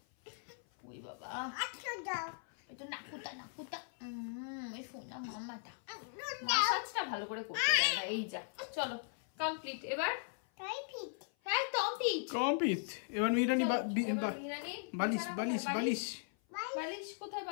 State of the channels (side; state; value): right; silent; 52 dB below the other